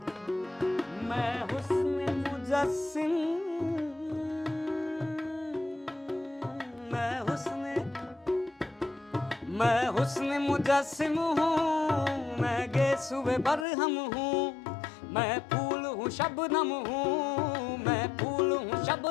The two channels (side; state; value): right; drops out; at 13.7 s